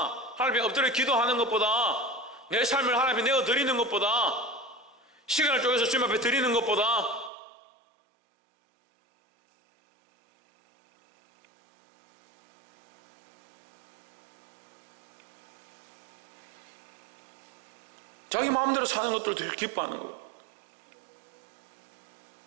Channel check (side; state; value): left; drops out; at 7.3 s